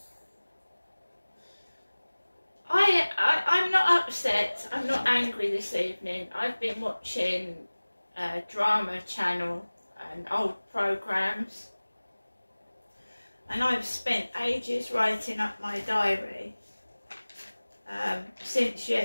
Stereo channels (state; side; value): inverted; both; correlation -1.00